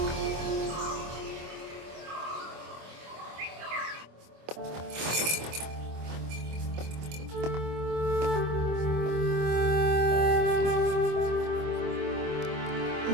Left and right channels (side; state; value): left; late; 25 ms